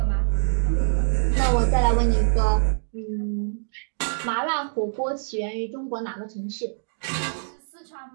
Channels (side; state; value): left; silent; digital silence